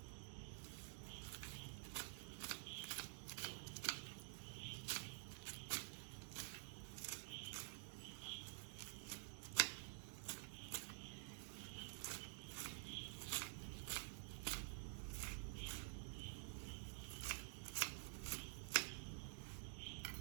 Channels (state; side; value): silent; left; digital silence